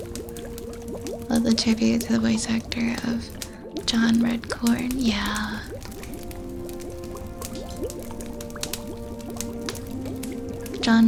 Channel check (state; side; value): identical; both; correlation 1.00